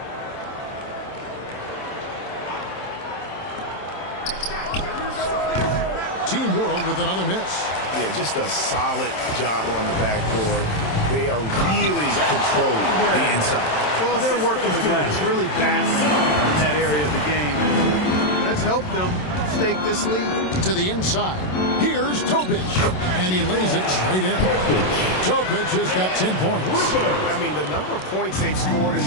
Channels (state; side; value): late; right; 27 ms